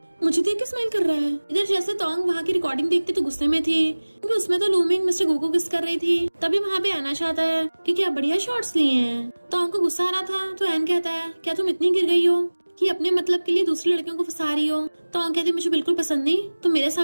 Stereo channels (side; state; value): both; inverted; correlation -1.00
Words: मुझे देख के स्माइल कर रहा है। इधर जैसे तोंग वहाँ की रिकॉर्डिंग देखते तो गुस्से में थी क्योंकि उसमें तो लूमिंग मिस्टर गू को किस कर रही थी। तभी वहाँ पे आना चाहता है कि क्या बढ़िया शॉट्स लिए हैं। तोंग को गुस्सा आ रहा था तो एन कहता है क्या तुम इतनी गिर गई हो कि अपने मतलब के लिए दूसरी लड़कियों को फंसा रही हो। तोंग कहती मुझे बिल्कुल पसंद नहीं, तो मेरे